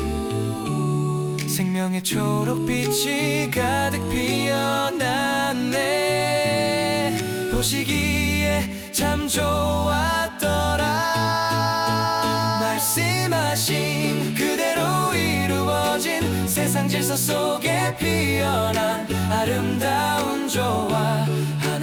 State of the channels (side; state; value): both; identical; correlation 1.00